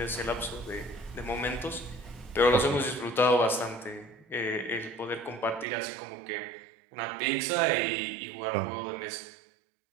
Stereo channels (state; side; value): drops out; left; at 5.7 s